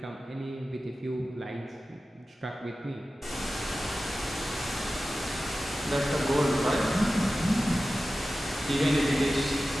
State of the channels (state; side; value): normal; both; correlation 0.95